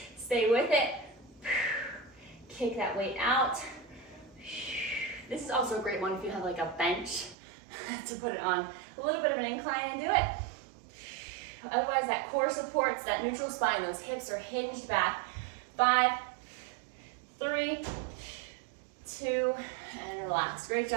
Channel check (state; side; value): drops out; left; at 7.4 s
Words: Stay with it. Kick that weight out. This is also a great one if you have like a bench to put it on a little bit of an incline and do it. Otherwise, that core supports that neutral spine. Those hips are hinged back. 5, 3, 2, and relax. Great